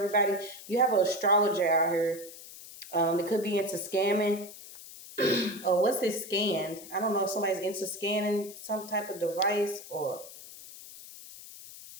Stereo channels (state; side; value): noise; left; hiss, 16 dB below the sound